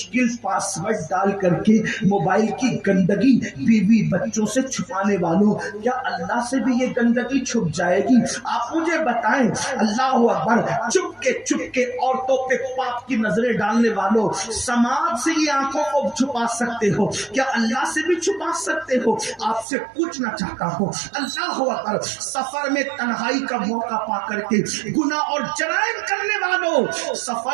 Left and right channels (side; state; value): left; drops out; at 19.7 s